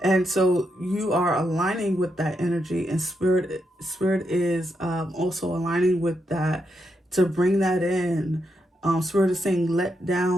And so you are aligning with that energy, and spirit is also aligning with that to bring that in. Spirit is saying let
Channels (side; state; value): both; normal; correlation 0.82